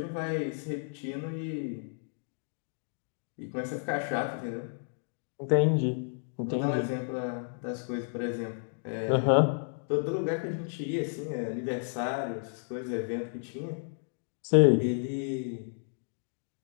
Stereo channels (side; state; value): right; silent; digital silence